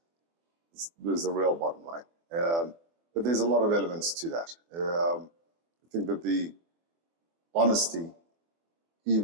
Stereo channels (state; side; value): late; left; 24 ms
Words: There's the real bottom line. But there's a lot of elements to that. I think that the honesty,